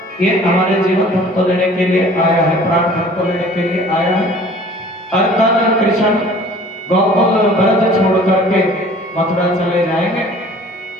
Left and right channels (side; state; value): both; normal; correlation 0.49